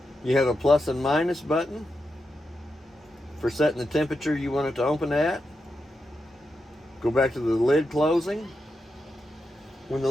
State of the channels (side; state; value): both; normal; correlation 0.87